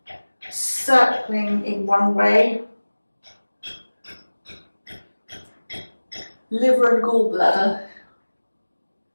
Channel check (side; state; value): both; inverted; correlation -1.00